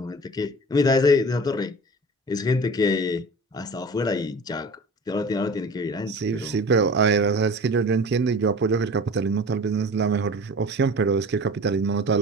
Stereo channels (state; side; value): normal; both; correlation 0.38